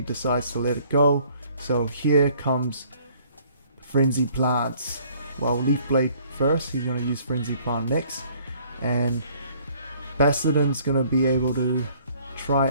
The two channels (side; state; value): both; inverted; correlation -0.59